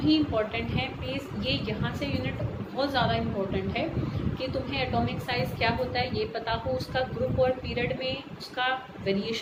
ही इम्पोर्टेंट हैं, प्लीज़ ये यहाँ से यूनिट बहुत ज़्यादा इम्पोर्टेंट है कि तुम्हें एटॉमिक साइज क्या होता है ये पता हो, उसका ग्रुप और पीरियड में उसका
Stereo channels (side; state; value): both; identical; correlation 1.00